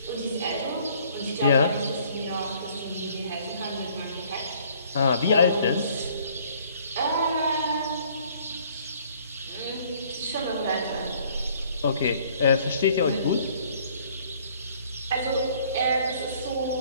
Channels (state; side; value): inverted; both; correlation -0.59